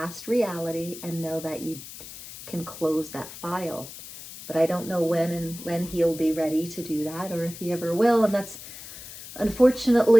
reality, and know that you can close that file. But I don't know when he'll be ready to do that, or if he ever will. And that's,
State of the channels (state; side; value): noise; left; hiss, 14 dB below the sound